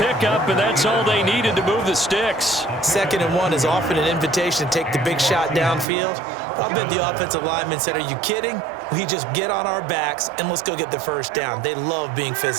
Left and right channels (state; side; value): drops out; left; at 5.9 s